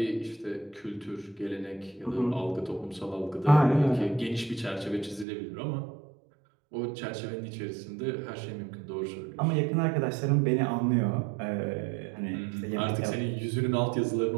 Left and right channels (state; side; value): drops out; left; at 5.2 s